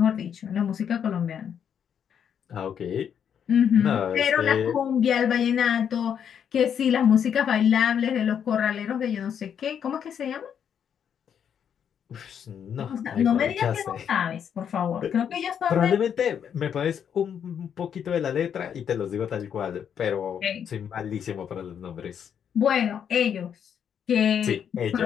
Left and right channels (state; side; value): quieter; right; 8.3 dB